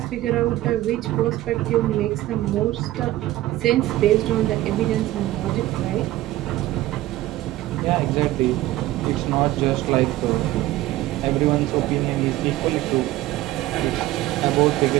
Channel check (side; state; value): left; quieter; 15.9 dB